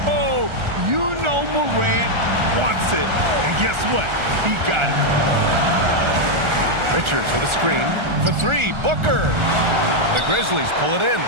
Oh, you know Morant wants it. And guess what? He got it. Richards with a screen. For three, Booker. The Grizzlies pull it in.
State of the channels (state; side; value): late; left; 1.4 ms